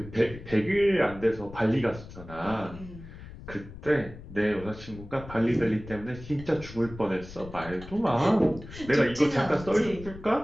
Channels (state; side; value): noise; left; rumble, 15 dB below the sound